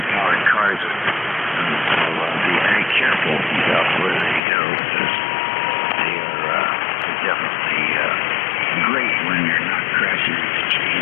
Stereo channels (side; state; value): right; drops out; at 4.4 s